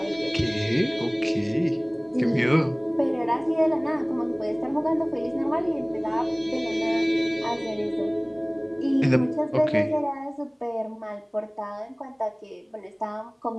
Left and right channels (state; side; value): identical; both; correlation 1.00